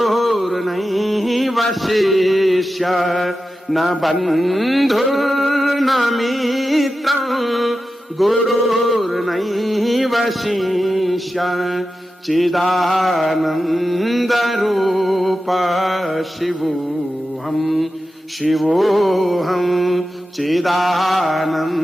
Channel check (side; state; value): both; normal; correlation 0.92